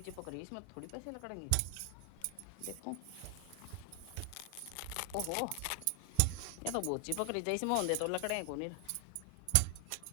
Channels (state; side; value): different; both; correlation 0.00